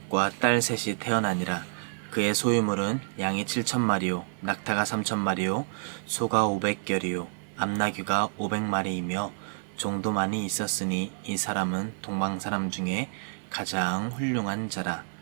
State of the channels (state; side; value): silent; left; digital silence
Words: 딸 3이 태어나니라. 그의 소유물은 양이 7,000마리요 낙타가 3,000마리요 소가 500결이요 암나귀가 500마리이며 종도 많이 있었으니 이 사람은 동방 사람 중에 가장 훌륭한 자라.